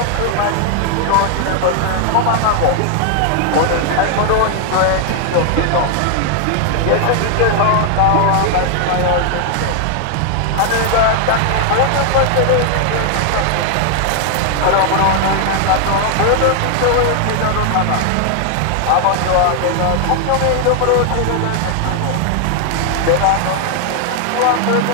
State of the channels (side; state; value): both; different; correlation 0.00